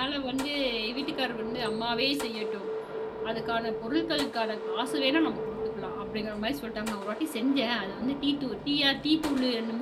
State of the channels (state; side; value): identical; both; correlation 1.00